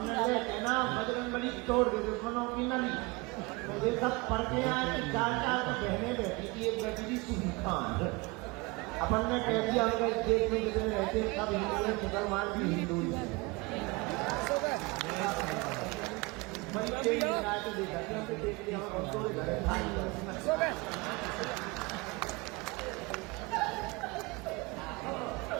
कहना बजरंगबली तोड़ दे दुश्मनों की नली। मुझे सब पढ़ के आए, 4 तो बहने बैठी थी, एक बैठी थी सुनी खान। अपन ने कह दिया उनका इस देश में जितने रहते हैं सब हिंदू है, मुसलमान भी हिंदू ही है। बड़ी तेज रात देखा देख लिया हम घर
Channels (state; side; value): quieter; left; 25.5 dB